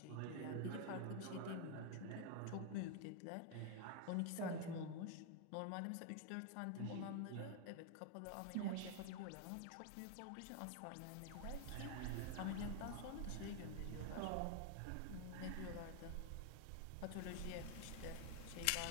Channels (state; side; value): different; both; correlation 0.00